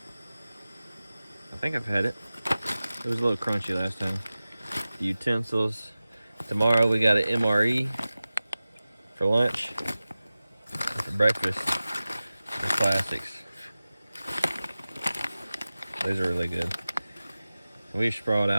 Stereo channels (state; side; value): inverted; both; correlation -0.96